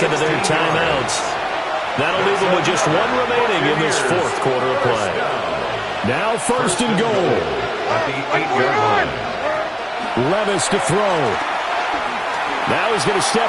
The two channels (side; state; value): both; identical; correlation 1.00